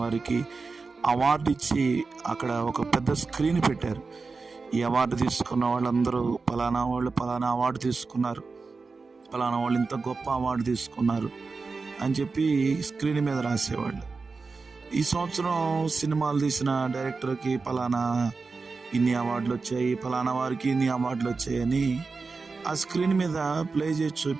వారికి అవార్డు ఇచ్చి అక్కడ ఒక పెద్ద స్క్రీన్ పెట్టారు. ఈ అవార్డు తీసుకున్న వాళ్ళందరూ పలానా అవార్డు తీసుకున్నారు, పలానా వాళ్ళు ఇంత గొప్ప అవార్డు తీసుకున్నారు అని చెప్పి స్క్రీన్ మీద రాసేవాళ్ళు. ఈ సంవత్సరం సినిమాలు తీసిన డైరెక్టర్కి పలానా ఇన్ని అవార్డులు వచ్చాయి, పలానా వారికి ఇన్ని అవార్డులు వచ్చాయని ఆ స్క్రీన్ మీద ప్లే చేసి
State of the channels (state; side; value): quieter; left; 4.3 dB